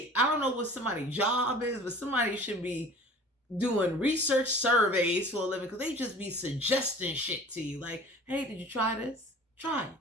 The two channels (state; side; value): normal; both; correlation 0.44